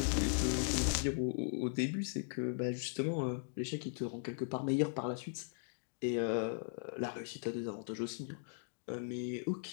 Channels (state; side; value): silent; right; digital silence